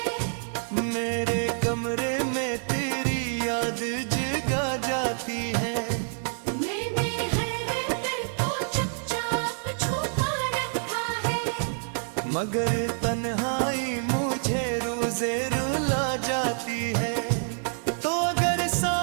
मेरे कमरे में तेरी याद जगा जाती है। मैंने हर दर को चुपचाप छुपा रखा है, मगर तन्हाई मुझे रोज़े रुला जाती है। तो अगर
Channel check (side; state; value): left; silent; digital silence